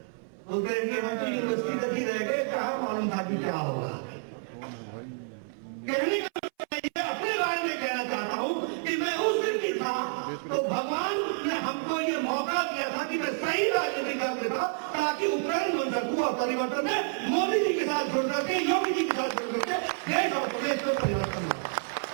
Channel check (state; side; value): silent; left; 58 dB below the other